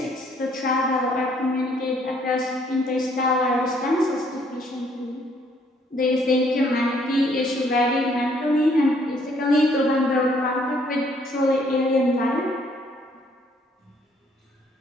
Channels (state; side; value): normal; both; correlation 0.65